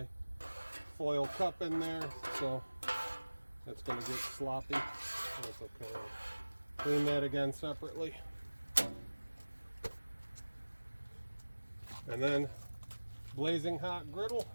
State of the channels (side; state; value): both; inverted; correlation -1.00